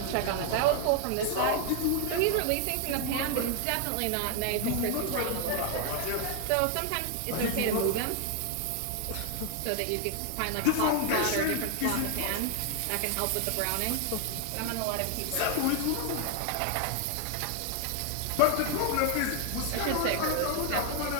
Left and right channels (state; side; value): different; both; correlation 0.00